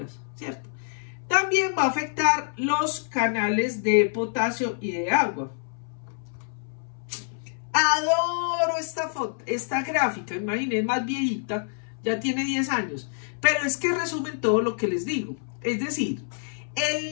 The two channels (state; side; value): silent; right; 60 dB below the other